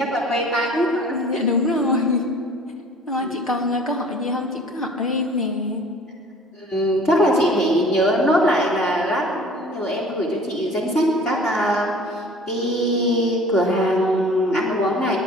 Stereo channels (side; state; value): both; normal; correlation 0.47